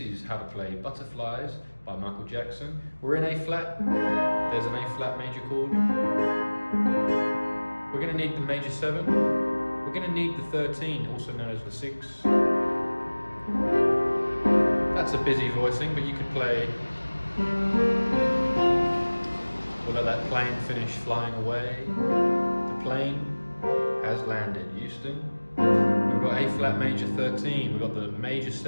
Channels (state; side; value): inverted; both; correlation -1.00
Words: is how to play Butterflies by Michael Jackson. We're in A flat. There's an A flat major chord. We're going to need the major 7. We're going to need the 13, also known as the 6. That's a busy voicing, but you could play. We'll let that plane finish flying away. The plane has landed, Houston. We've got A flat major 13, we've got the major